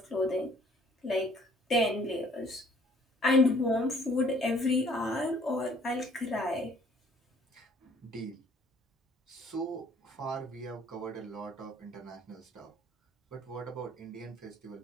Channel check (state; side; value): normal; both; correlation 0.59